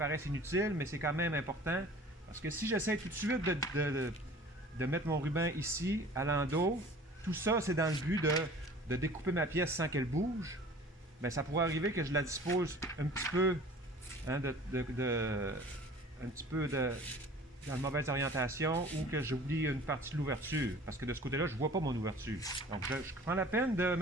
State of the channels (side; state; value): both; normal; correlation 0.45